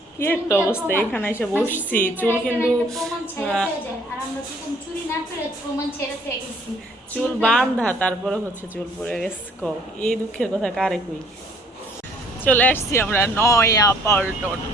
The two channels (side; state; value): both; normal; correlation 0.60